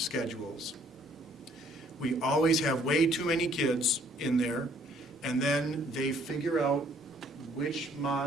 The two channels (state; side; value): normal; both; correlation 0.62